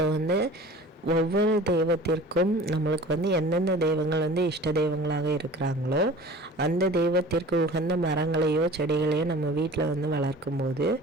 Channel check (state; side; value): normal; both; correlation 0.42